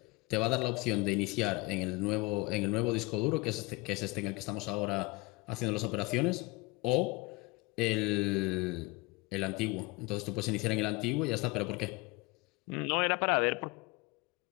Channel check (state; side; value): quieter; right; 24.5 dB